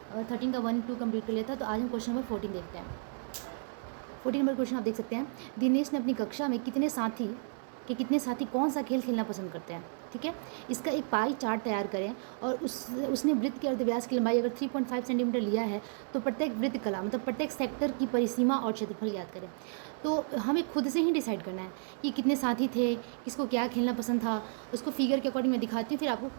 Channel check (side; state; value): left; silent; 56 dB below the other